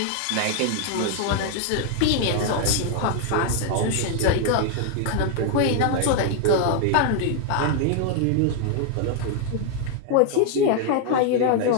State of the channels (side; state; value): both; different; correlation 0.00